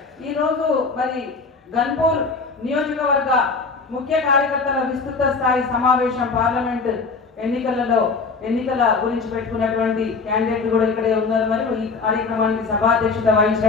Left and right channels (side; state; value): right; quieter; 4.4 dB